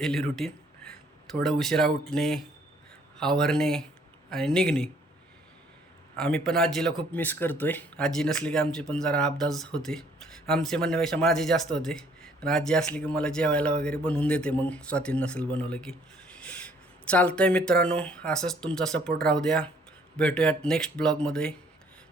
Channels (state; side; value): normal; both; correlation 0.62